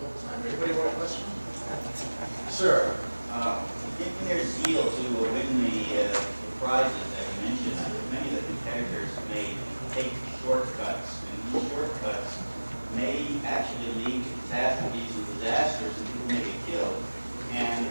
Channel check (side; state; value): both; inverted; correlation -1.00